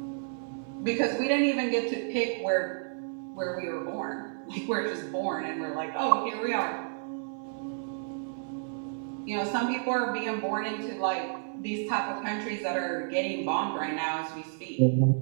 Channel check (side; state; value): left; silent; 57 dB below the other